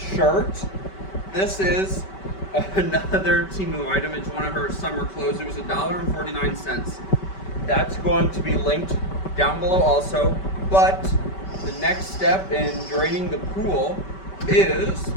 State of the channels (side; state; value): right; late; 5.2 ms